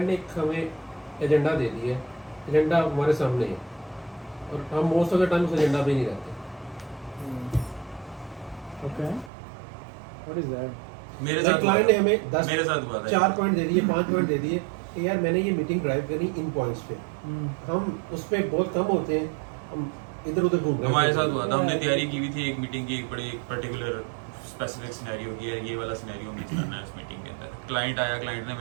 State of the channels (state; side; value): drops out; left; at 9.3 s